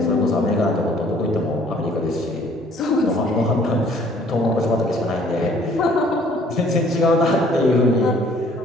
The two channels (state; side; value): normal; both; correlation 0.58